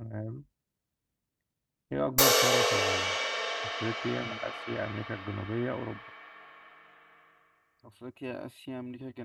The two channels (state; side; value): identical; both; correlation 1.00